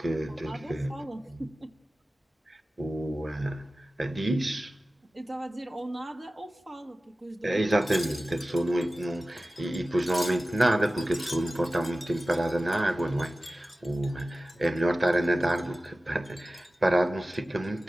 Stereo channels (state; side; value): normal; both; correlation 0.96